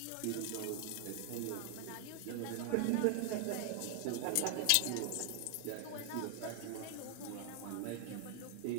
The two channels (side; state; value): both; different; correlation 0.00